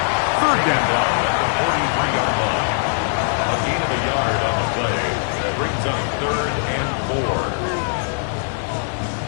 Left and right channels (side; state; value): right; silent; digital silence